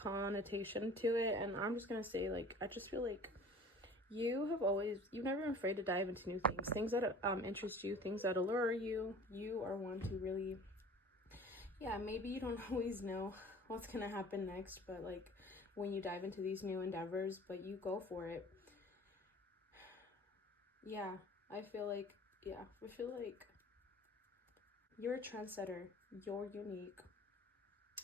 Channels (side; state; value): both; normal; correlation 0.45